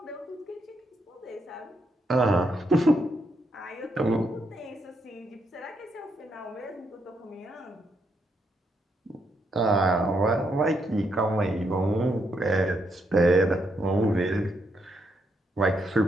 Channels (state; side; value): normal; both; correlation 0.78